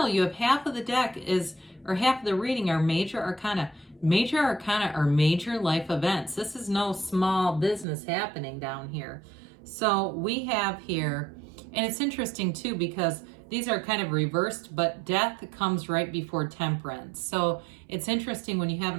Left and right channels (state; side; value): drops out; left; at 7.9 s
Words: You have half of the deck or half of the reading are major arcana. Major arcana are major life events. This is no small business happening down here. So we have here, and it's interesting too because these are kind of reversed, but death comes right before temperance. So it's interesting when you have